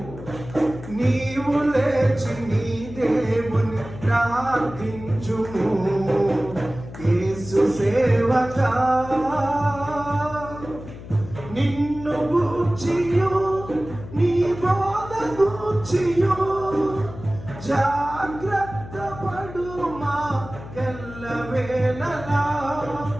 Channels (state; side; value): noise; left; hum, 13 dB below the sound